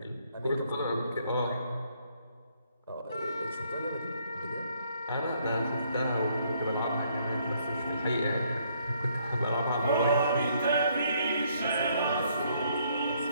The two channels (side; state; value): both; inverted; correlation -0.69